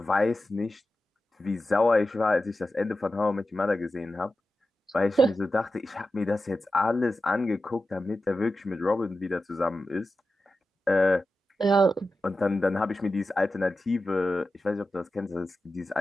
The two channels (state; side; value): normal; both; correlation 0.92